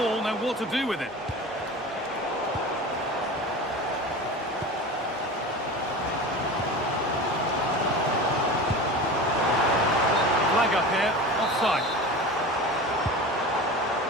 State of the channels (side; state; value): both; normal; correlation 0.32